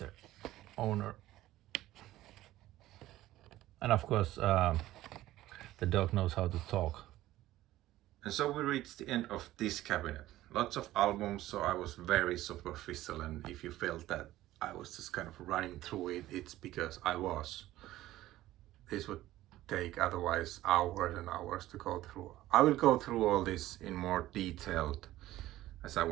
owner. And of course the dog knows how to talk. And so we reached the end of this cabinet. Lots of albums, so I was very superficial, and if you felt that I was just kind of running through it, it's because I was. This would take otherwise hours and hours to go through. I will go through all this in more detailed as I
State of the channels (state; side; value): quieter; left; 15.3 dB